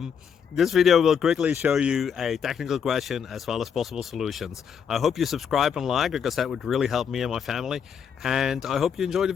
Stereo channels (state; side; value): quieter; right; 7.3 dB